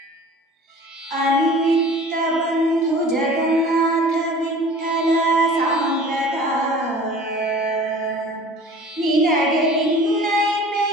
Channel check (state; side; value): normal; both; correlation 0.44